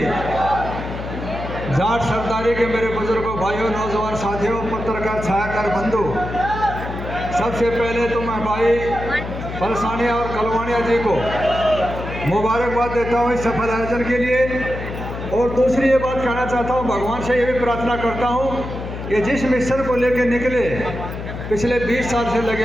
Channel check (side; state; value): left; noise; hum, 8 dB below the sound